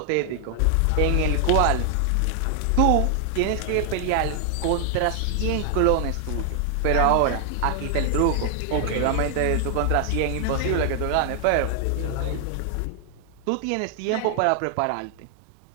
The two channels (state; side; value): different; both; correlation 0.00